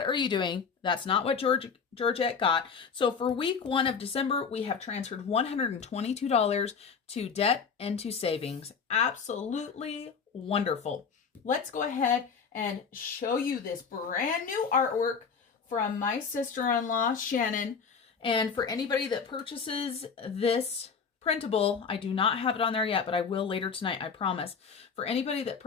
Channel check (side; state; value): right; quieter; 5.9 dB